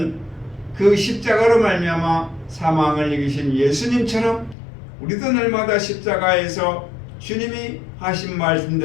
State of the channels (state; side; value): drops out; right; at 4.5 s